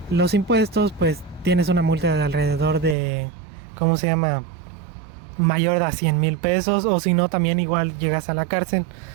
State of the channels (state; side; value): drops out; left; at 3.0 s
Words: los impuestos pues tienes una multa de alrededor de, ¿cómo se llama?, mayor a 100,000 pesos, o si no también igual llegas a la cárcel.